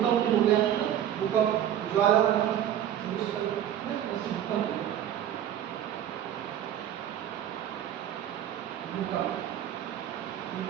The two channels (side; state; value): left; quieter; 10.8 dB